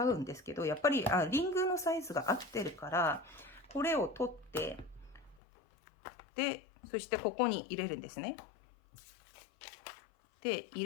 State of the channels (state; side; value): drops out; right; at 5.4 s